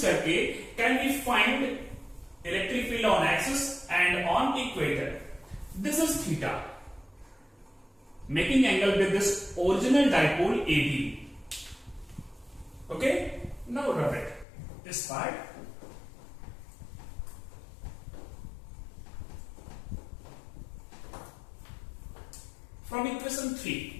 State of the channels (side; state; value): right; drops out; at 14.5 s